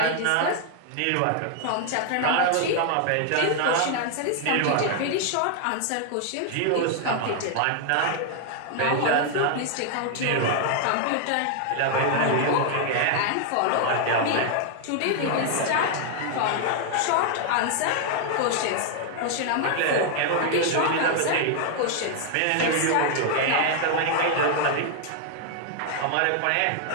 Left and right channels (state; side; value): different; both; correlation 0.00